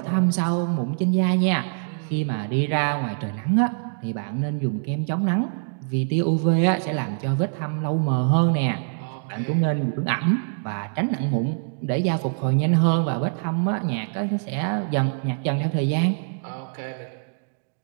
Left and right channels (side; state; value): left; silent; digital silence